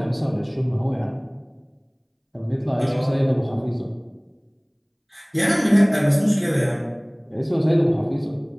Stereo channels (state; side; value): identical; both; correlation 1.00